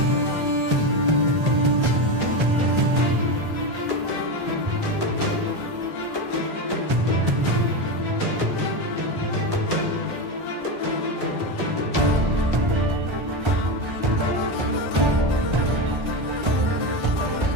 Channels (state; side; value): late; left; 1.3 ms